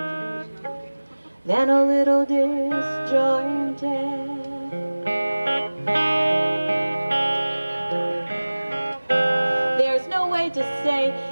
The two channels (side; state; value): both; inverted; correlation -1.00